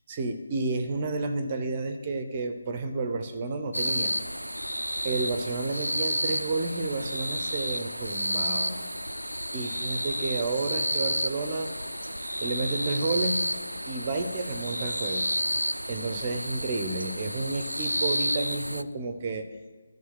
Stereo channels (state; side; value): inverted; both; correlation -0.86